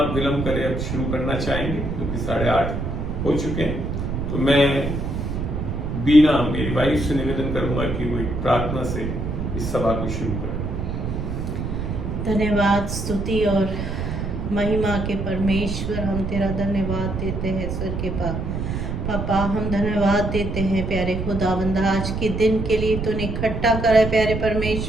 विलंब करे अब शुरू करना चाहेंगे क्योंकि 8:30 हो चुके हैं। तो मैं बीना मेरी वाइफ से निवेदन करूंगा कि वो एक प्रार्थना से इस सभा को शुरू करें। धन्यवाद, स्तुति और महिमा के परमेश्वर, हम तेरा धन्यवाद देते हैं स्वर्ग के पापा। हम धन्यवाद देते हैं प्यारे खुदावंद, आज के दिन के लिए तूने इकट्ठा करा है प्यारे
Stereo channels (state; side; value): noise; right; rumble, 3 dB below the sound